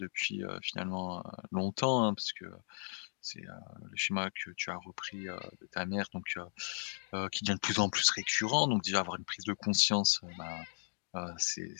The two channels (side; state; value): right; silent; digital silence